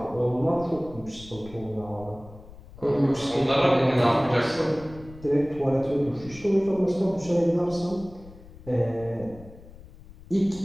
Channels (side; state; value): left; noise; rumble, 19 dB below the sound